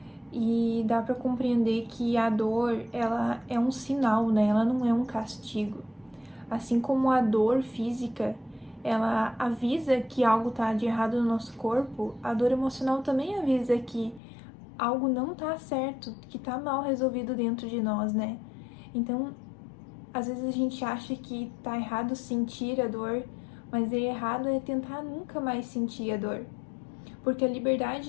E dá para compreender que a dor, ela é um sinal, né? Ela não é um castigo. Assim como a dor física, ela avisa que algo tá de errado no nosso corpo, a dor emocional também avisa que algo não tá certo, que tá mal resolvido dentro de nós, né? Então, às vezes a gente acha que tá errado sentir a dor, mas errado é tentar nunca mais sentir a dor. Porque a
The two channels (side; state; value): right; drops out; at 14.2 s